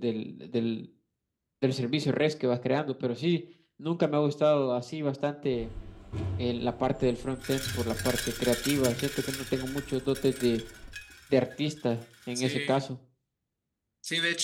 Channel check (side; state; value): both; identical; correlation 1.00